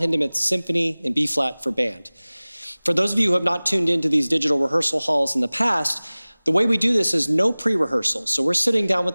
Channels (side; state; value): both; inverted; correlation -0.99